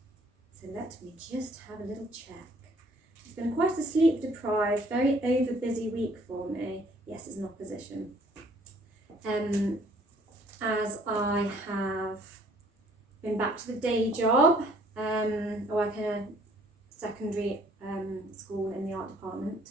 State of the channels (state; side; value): normal; both; correlation 0.60